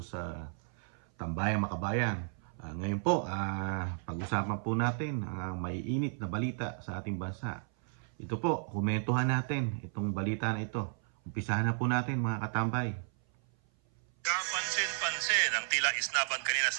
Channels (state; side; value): silent; left; 55 dB below the other